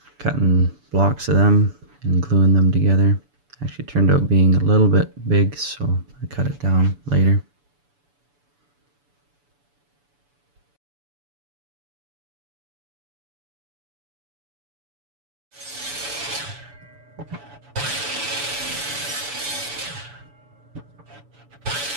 cutting blocks of them and gluing them together. Actually turned out being a little bit big, so I cut it down later.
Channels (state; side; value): late; left; 7.0 ms